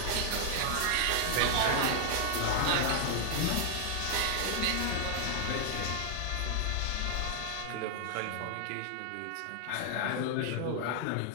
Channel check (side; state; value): both; different; correlation 0.00